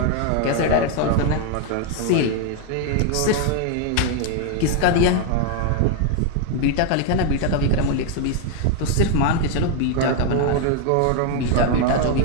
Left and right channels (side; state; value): both; different; correlation 0.01